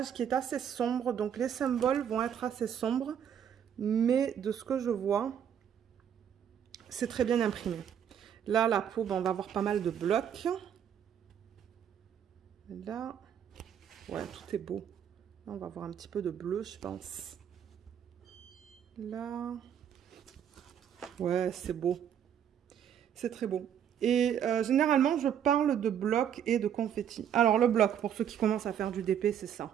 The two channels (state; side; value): quieter; left; 9.0 dB